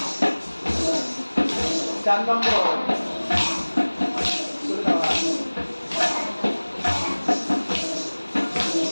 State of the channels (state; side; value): inverted; both; correlation -1.00